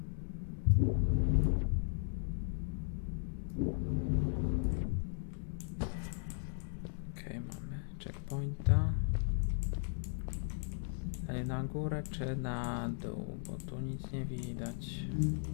Okej, mamy checkpointa. Dalej na górę czy na dół, bo tu nic nie widać.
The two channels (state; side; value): silent; right; digital silence